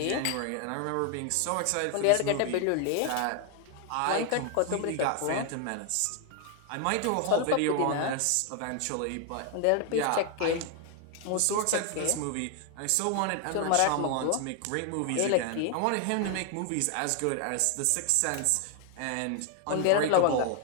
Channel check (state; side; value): different; both; correlation 0.00